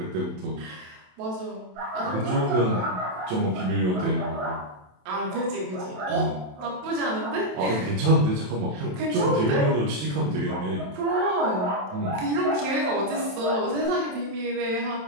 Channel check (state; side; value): late; left; 27 ms